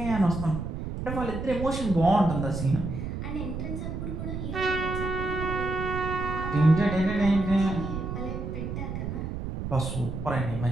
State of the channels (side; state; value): right; noise; rumble, 5 dB below the sound